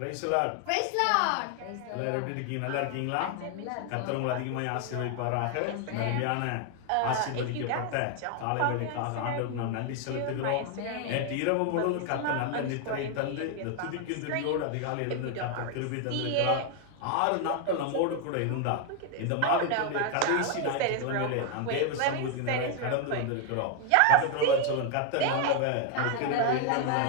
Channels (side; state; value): both; different; correlation 0.01